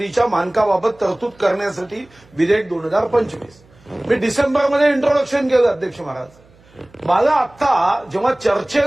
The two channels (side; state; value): right; noise; hum, 29 dB below the sound